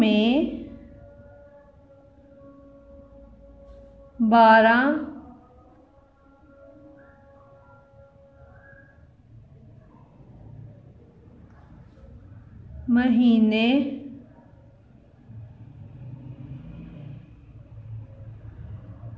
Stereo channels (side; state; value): both; identical; correlation 1.00